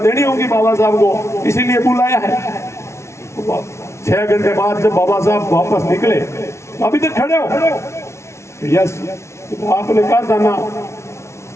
होगी बाबा साहब को, इसीलिए बुलाया है। 6 घंटे बाद जब बाबा साहब वापस निकले, अभी तक खड़े हो? यस। तो आपने कहा था ना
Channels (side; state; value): right; late; 0.13 ms